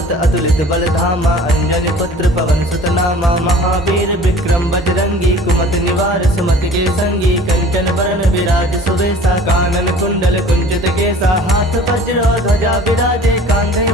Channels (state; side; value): normal; both; correlation 0.46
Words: अतुलित बल धामा अंजनी पुत्र पवन सुत नामा महावीर विक्रम बजरंगी कुमति निवार सुमति के संगी कंचन बरन विराज सुबेसा कानन कुंडल कुंचित केसा हाथ वज्र ध्वजा विराजे कांधे